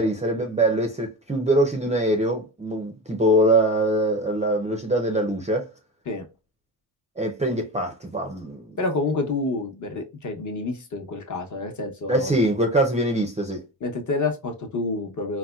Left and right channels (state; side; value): normal; both; correlation 0.26